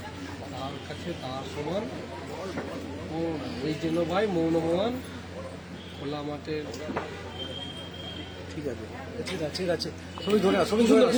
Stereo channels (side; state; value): both; identical; correlation 1.00